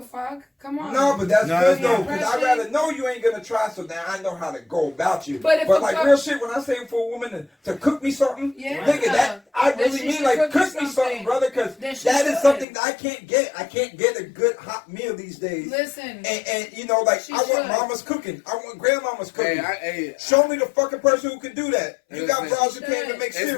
fuck? Come on. No, but that's good though, because I'd rather know you ain't gonna try, so now I know how to go about you. But like real shit, when I say for a woman to cook me something, nigga, that I really mean like cook me something, brother, because that is something that I can't get. I can't get a good hot meal these days. Listen, and you know, like I want mama's cooking. I want grandmama's cooking. Show me the fucking person who can do that. You got bras who can't even make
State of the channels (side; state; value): right; drops out; at 12.7 s